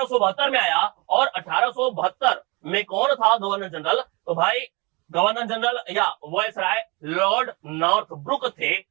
में आया। और 1872 में कौन था गवर्नर जनरल? तो भाई गवर्नर जनरल या वायसराय लॉर्ड नॉर्थब्रुक थे।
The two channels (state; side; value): quieter; left; 27.3 dB